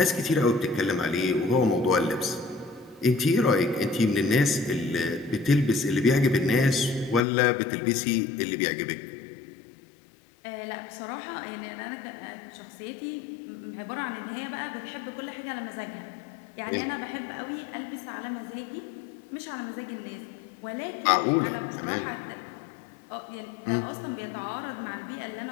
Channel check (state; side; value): drops out; right; at 7.2 s